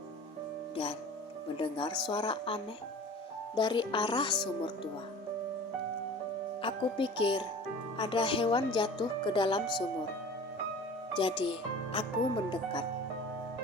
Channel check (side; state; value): both; normal; correlation 0.41